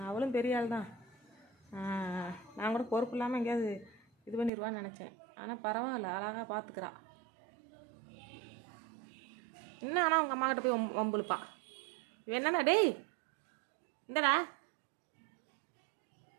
அவளும் பெரிய ஆள் தான். நான் கூட பொறுப்பு இல்லாமல் எங்கேயாவது இது பண்ணிடுவான்னு நினச்சேன். ஆனால் பரவாயில்ல, அழகாக பார்த்துக்கிறா. என்ன ஆனால் அவங்க அம்மாக்கிட்ட போய் வம்புழுப்பா. இவன் என்னண்ணா டேய் இந்தடா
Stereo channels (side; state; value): left; drops out; at 4.5 s